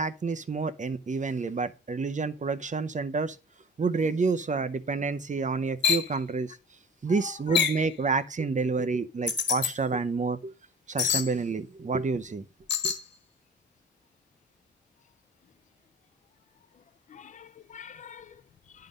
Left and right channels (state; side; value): normal; both; correlation 0.42